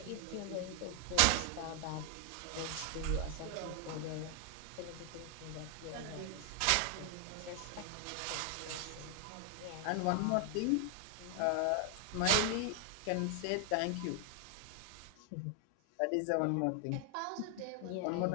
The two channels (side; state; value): both; different; correlation 0.00